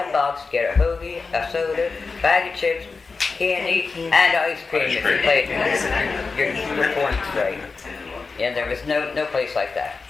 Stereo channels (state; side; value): quieter; right; 4.4 dB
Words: get a hoagie, a soda, bag of chips, candy, and ice cream if you played your points right. Yeah, there was no place like that.